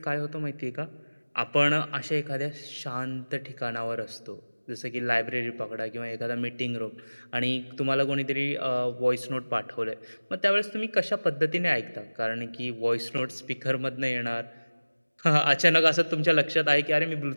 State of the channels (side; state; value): both; inverted; correlation -1.00